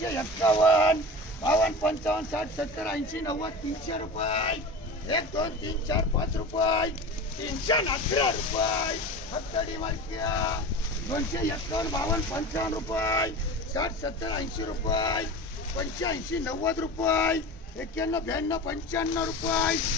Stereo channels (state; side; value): normal; both; correlation 0.32